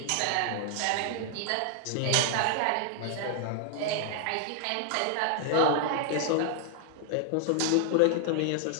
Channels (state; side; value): different; both; correlation 0.00